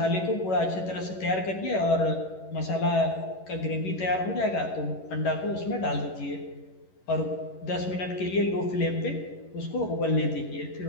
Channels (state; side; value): late; right; 11 ms